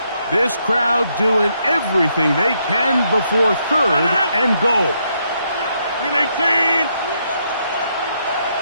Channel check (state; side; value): inverted; both; correlation -0.76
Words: This crowd doing everything they can before 3rd and goal. 318.